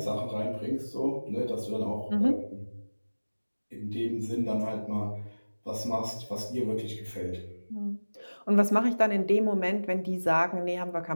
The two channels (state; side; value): inverted; both; correlation -1.00